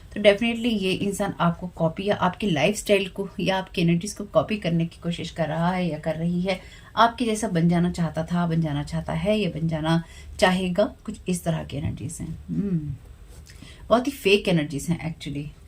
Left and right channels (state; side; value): identical; both; correlation 1.00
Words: तो डेफिनेटली ये इंसान आपको कॉपी या आपकी लाइफस्टाइल को या आपकी एनर्जीज को कॉपी करने की कोशिश कर रहा है या कर रही है। आपके जैसा बन जाना चाहता था, बन जाना चाहता है, या बन जाना चाहेगा, कुछ इस तरह की एनर्जीज हैं। बहुत ही फेक एनर्जीज हैं एक्चुअली।